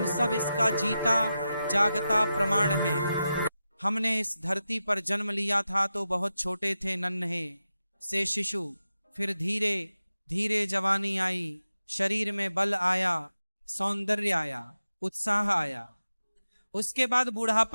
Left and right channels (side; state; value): both; inverted; correlation -0.91